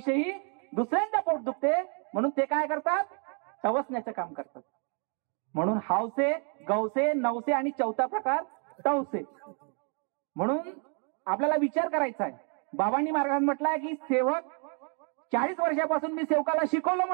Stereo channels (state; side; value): quieter; left; 39.8 dB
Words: दुसऱ्यांचा पोट दुखते म्हणून ते काय करतात? टवसण्याचं काम करतात. म्हणून हावसे, गवसे, नवसे आणि 4था प्रकार टवसे. म्हणून आपल्याला विचार करायचा आहे. बाबांनी मार्गात म्हटलंय की सेवक 40 वर्षापासून मी सेवकाला शिकवलं